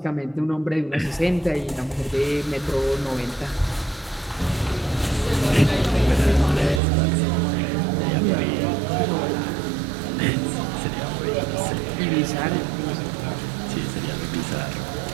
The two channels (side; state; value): left; drops out; at 6.8 s